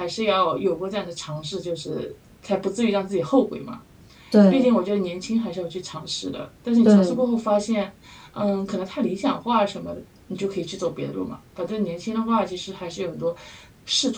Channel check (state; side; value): identical; both; correlation 1.00